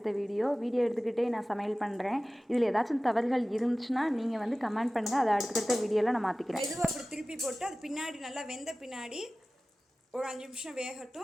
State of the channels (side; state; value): both; normal; correlation 0.96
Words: வீடியோ எடுத்துக்கிட்டே நான் சமையல் பண்ணுறேன். இதில் ஏதாச்சும் தவறுகள் இருந்துச்சுன்னா நீங்கள் வந்து கமெண்ட் பண்ணுங்கள். அதை அடுத்தடுத்த வீடியோவில் நான் மாற்றிக்கிறேன். மெதுவாக அப்படி திருப்பி போட்டு அது பின்னாடி நல்லா வெந்த பின்னாடி ஒரு 5 நிமிஷம்